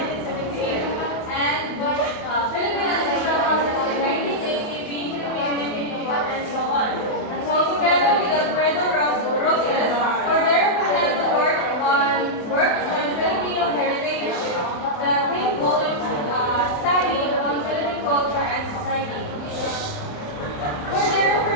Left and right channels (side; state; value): right; late; 28 ms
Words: and Philippine Ancestral Houses in 1980, Being Filipino, and so on. And so together with Alfredo Roses, Cordero Fernando works on Filipino heritage, the 10 volumes study on Philippine culture and society. Cordero